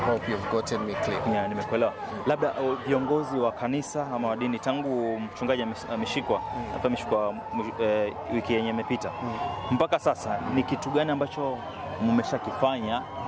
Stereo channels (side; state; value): both; identical; correlation 1.00